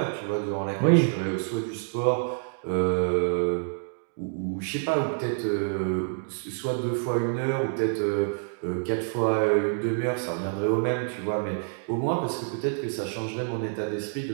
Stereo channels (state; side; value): silent; left; digital silence